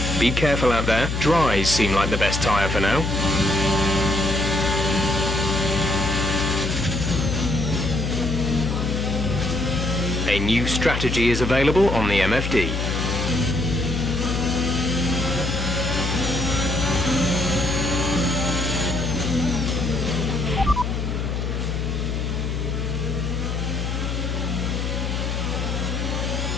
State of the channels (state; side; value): noise; left; hum, 2 dB below the sound